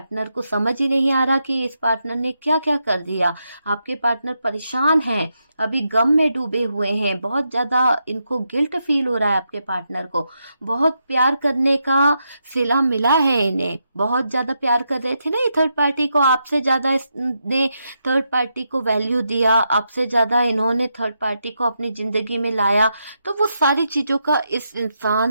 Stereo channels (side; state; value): both; inverted; correlation -0.83